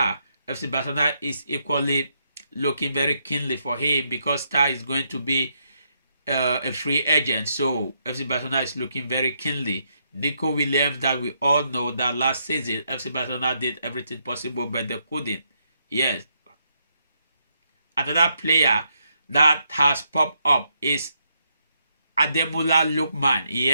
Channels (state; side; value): inverted; both; correlation -0.77